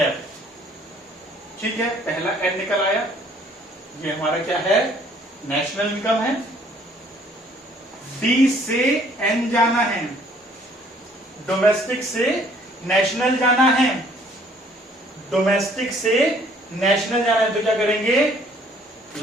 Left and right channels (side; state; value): both; normal; correlation 0.60